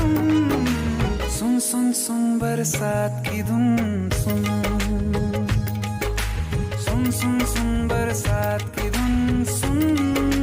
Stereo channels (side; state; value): both; identical; correlation 1.00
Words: सुन सुन सुन बरसात की धुन सुन। सुन सुन सुन बरसात की धुन सुन।